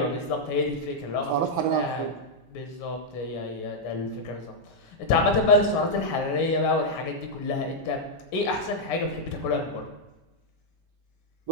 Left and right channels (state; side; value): late; right; 5.2 ms